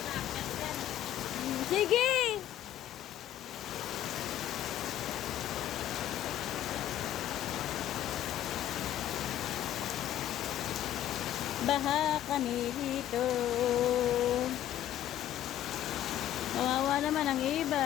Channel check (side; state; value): right; quieter; 12.1 dB